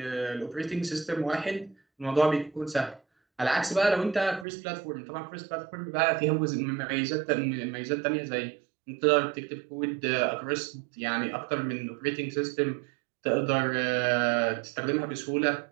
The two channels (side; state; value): left; drops out; at 4.5 s